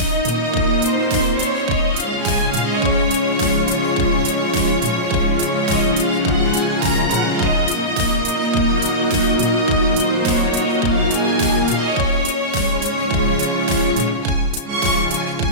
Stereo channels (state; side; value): late; left; 34 ms